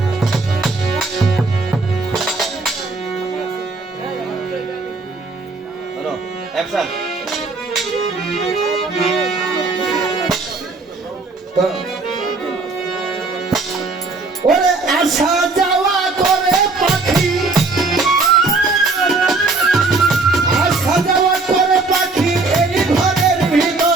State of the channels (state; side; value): quieter; left; 3.8 dB